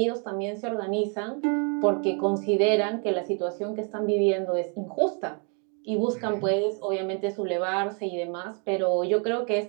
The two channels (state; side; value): quieter; left; 37.8 dB